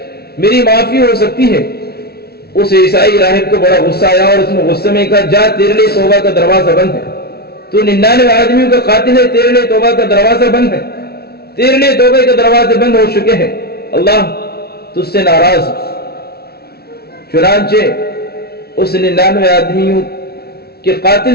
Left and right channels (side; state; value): right; late; 0.45 ms